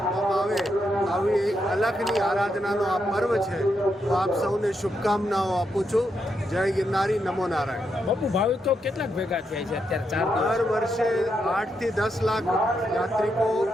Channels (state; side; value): normal; both; correlation 0.82